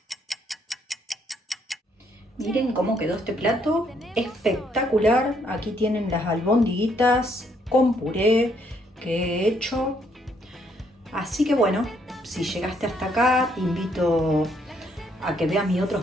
Miren cómo quedó este plato, espectacular. Aquí tienen las albondiguitas con puré que he hecho. Así que bueno, si llegaste hasta acá, te invito a que veas mis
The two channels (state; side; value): normal; both; correlation 0.70